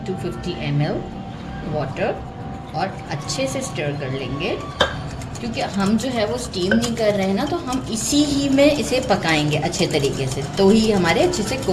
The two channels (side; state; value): both; identical; correlation 1.00